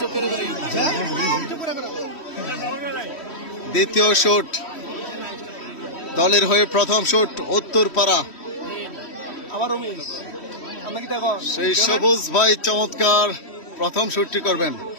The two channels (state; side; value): late; right; 3.1 ms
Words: দ্বিতীয় শুট দলের হয়ে প্রথম শুট উত্তরপাড়া, সেই সবুজ ভাই চমৎকার প্রথম শুটটি করবেন।